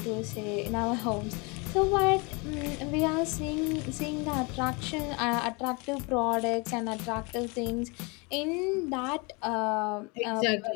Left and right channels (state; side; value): quieter; right; 29.3 dB